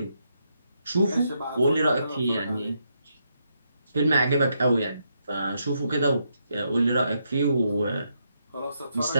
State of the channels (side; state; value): both; inverted; correlation -0.79